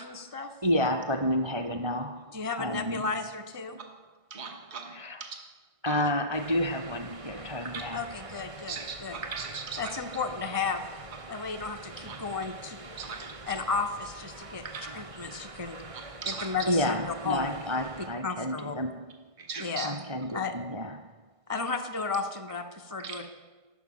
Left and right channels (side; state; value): left; late; 1.5 ms